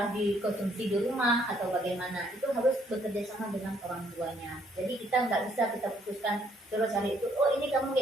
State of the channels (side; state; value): both; normal; correlation 0.67